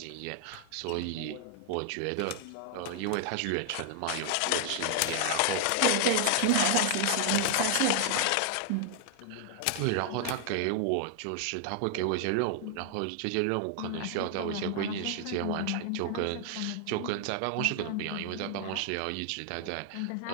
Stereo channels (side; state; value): both; different; correlation 0.00